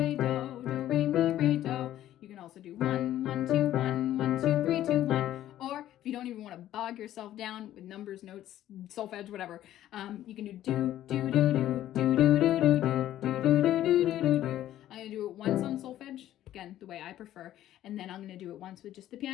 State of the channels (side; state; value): right; quieter; 12.8 dB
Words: mi, re, do. You can also do 1, 1, 2, 1, 1, 2, 3, 2, 1. Or if you don't even want to bog yourself down with numbers, notes, solfege, whatever, you can do do, do, do, do, do, do, do, do, do, do, do, do, do, do. I'm gonna do it once on solfege, again, the way I prefer, and then I'm gonna do it once with just the